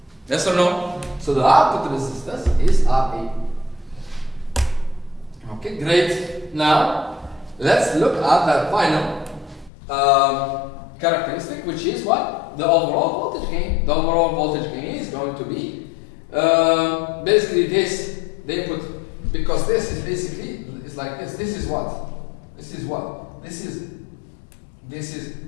Yes or no? So the output resistance is RE. Okay, great. Now, let's look at the final characteristic, which is what? The overall voltage gain. The overall voltage gain is going to be basically this, the input, because this is basically, it's like this. This is what? This is what? This is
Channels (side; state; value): right; drops out; at 9.7 s